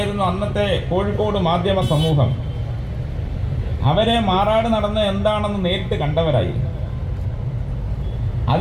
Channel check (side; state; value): both; identical; correlation 1.00